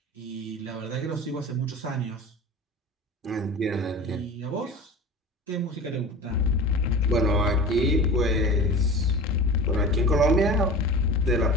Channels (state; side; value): normal; both; correlation 0.35